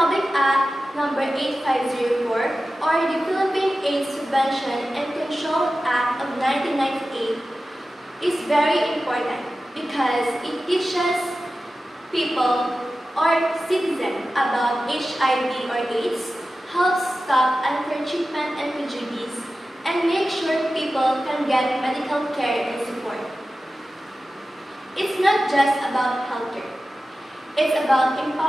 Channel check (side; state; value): both; normal; correlation 0.94